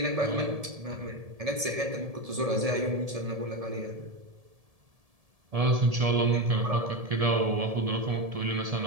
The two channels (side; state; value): left; late; 1.7 ms